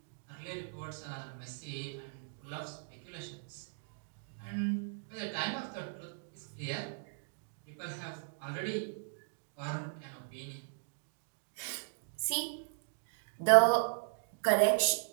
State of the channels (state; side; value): silent; left; digital silence